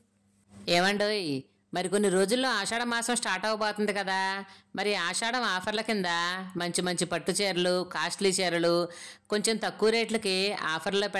ఏమండోయ్, మరి కొన్ని రోజుల్లో ఆషాఢ మాసం స్టార్ట్ అవబోతుంది కదా. మరి ఆషాఢం ఆఫర్ల కింద మంచి మంచి పట్టు చీరలు, కాస్ట్లీ చీరలు కొంచెం తక్కువ రేట్లకి ఆఫర్లో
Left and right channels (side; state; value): both; identical; correlation 1.00